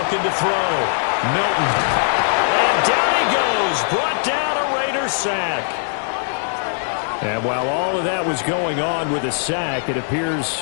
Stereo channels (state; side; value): silent; right; 66 dB below the other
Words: to throw. Milton. And down he goes. Brought down a Raiders sack. And while all of that was going on with a sack, it appears,